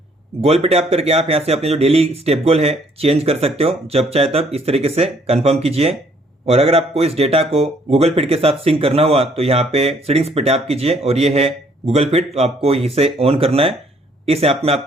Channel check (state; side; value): normal; both; correlation 0.64